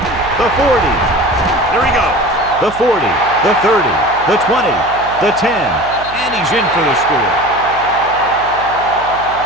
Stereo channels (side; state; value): right; noise; hum, 17 dB below the sound